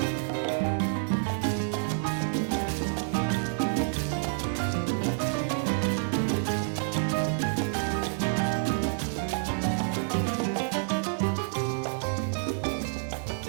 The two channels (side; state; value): left; silent; 59 dB below the other